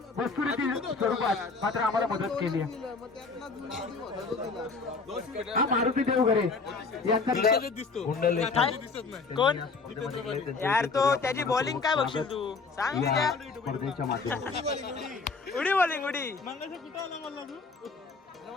वस्तुरीती स्वरूपात मात्र आम्हाला मदत केली आहे. हा मारुती देवघरे यांचा कोण यार तो त्याची बॉलिंग काय बघशील तू सांग. स्पर्धेच्या माध्यमातून उडी बॉलिंग उडी.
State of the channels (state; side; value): quieter; right; 4.3 dB